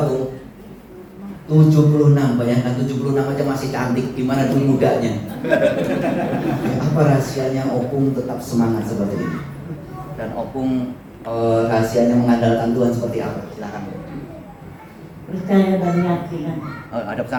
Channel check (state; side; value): identical; both; correlation 1.00